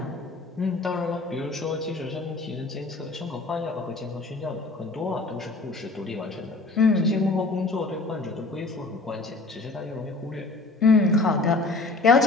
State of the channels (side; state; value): right; quieter; 3.4 dB